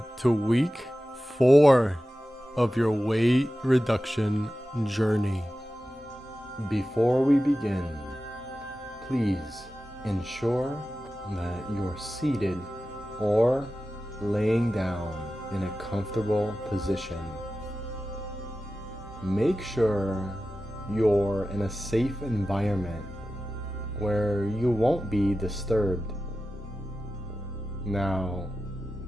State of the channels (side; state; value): both; normal; correlation 0.94